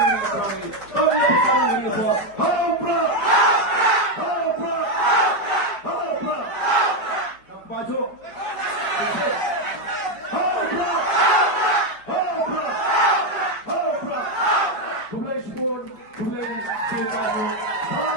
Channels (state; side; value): late; right; 4.9 ms